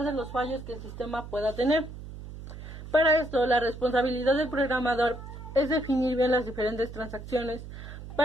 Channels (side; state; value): right; noise; hum, 12 dB below the sound